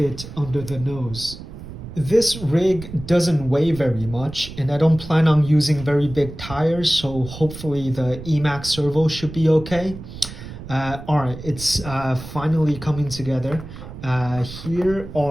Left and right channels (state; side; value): noise; right; rumble, 12 dB below the sound